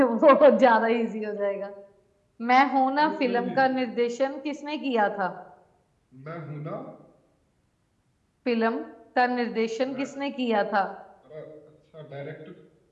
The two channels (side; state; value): both; identical; correlation 1.00